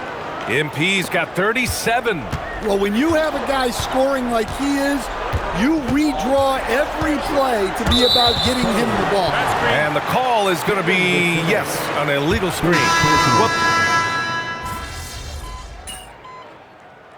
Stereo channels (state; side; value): identical; both; correlation 1.00